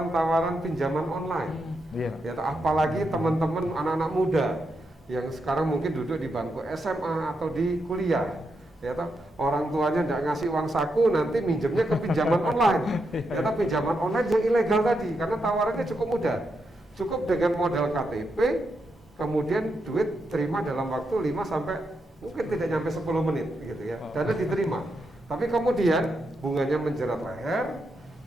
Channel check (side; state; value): both; normal; correlation 0.83